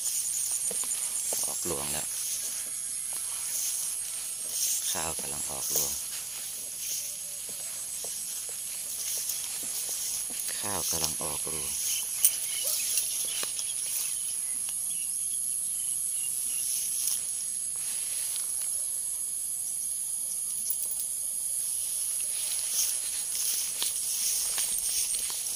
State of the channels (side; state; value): left; quieter; 4.1 dB